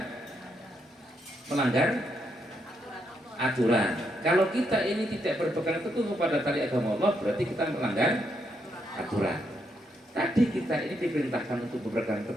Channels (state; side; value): normal; both; correlation 0.78